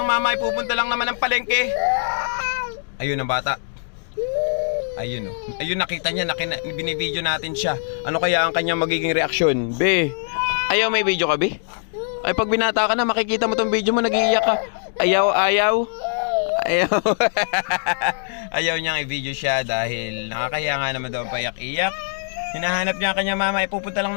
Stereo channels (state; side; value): silent; right; digital silence